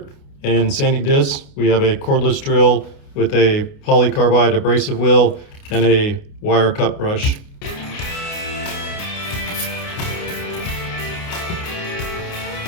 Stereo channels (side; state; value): right; late; 29 ms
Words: and sanding disc. We have a cordless drill with a polycarbide abrasive wheel and a wire cut brush.